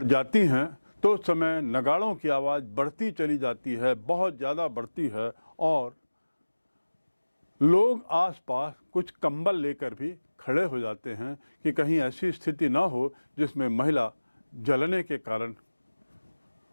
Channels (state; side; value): inverted; both; correlation -1.00